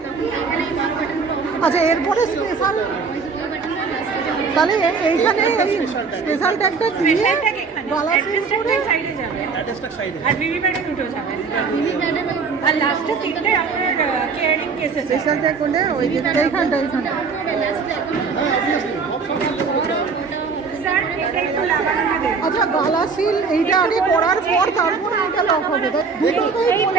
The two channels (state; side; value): quieter; left; 5.1 dB